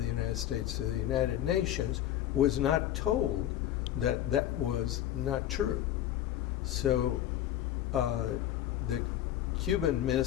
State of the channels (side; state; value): right; quieter; 12.0 dB